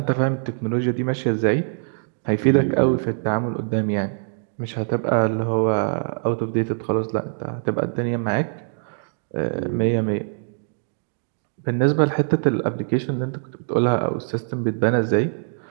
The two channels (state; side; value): silent; left; digital silence